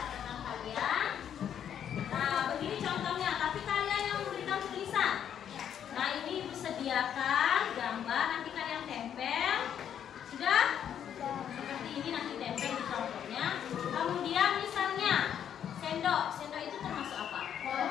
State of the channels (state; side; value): quieter; right; 9.2 dB